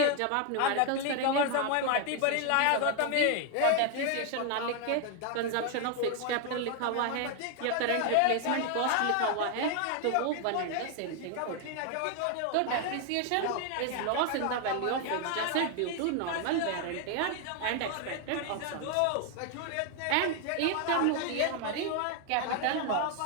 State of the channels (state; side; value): different; both; correlation 0.01